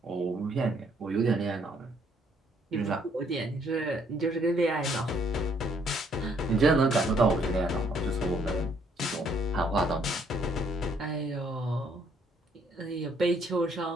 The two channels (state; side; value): normal; both; correlation 0.67